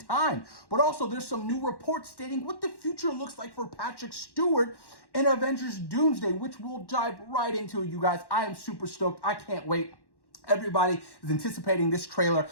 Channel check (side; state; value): right; late; 1.1 ms